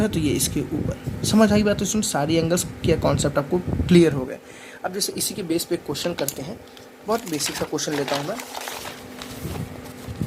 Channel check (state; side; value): identical; both; correlation 1.00